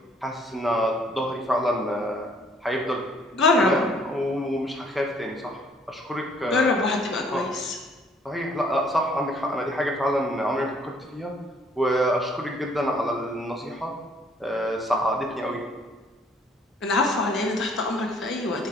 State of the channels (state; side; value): normal; both; correlation 0.61